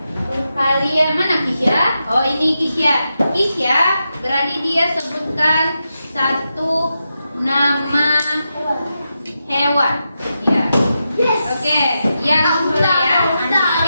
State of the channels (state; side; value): inverted; both; correlation -0.88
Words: Kalian mana Kisya? Oh, ini Kisya. Kisya, berani dia sebutkan satu nama hewan. Ya. Oke, yang soleh ya.